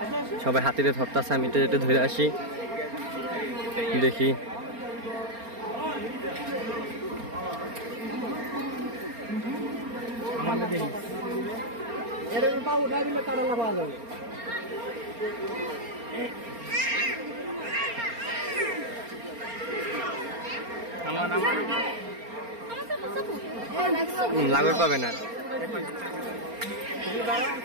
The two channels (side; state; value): left; late; 4.3 ms